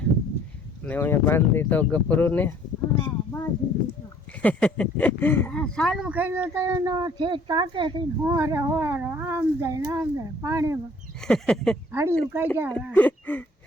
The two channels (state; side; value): normal; both; correlation 0.57